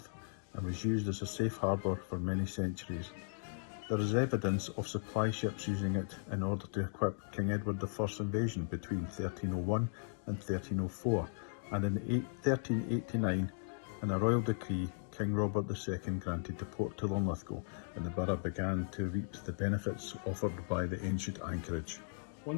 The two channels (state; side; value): silent; right; digital silence